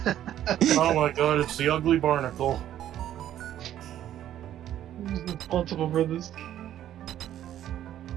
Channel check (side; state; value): left; quieter; 11.7 dB